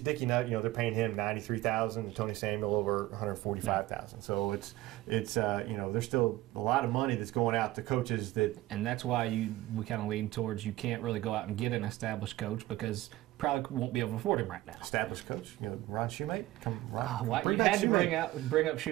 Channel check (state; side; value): quieter; left; 17.0 dB